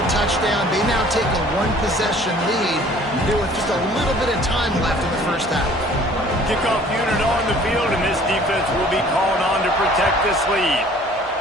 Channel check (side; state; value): both; normal; correlation 0.52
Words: touchdown. They now take a 1-possession lead here with just a little bit of time left in the first half. Kickoff unit on the field, and this defense will be called on to protect this lead.